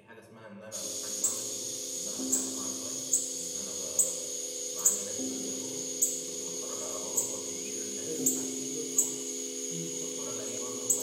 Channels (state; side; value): identical; both; correlation 1.00